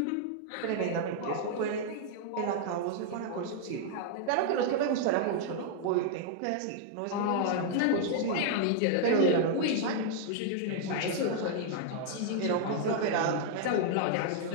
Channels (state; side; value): different; both; correlation -0.01